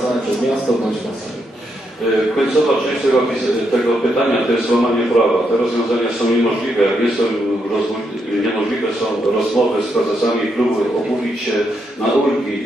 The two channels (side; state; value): both; normal; correlation 0.79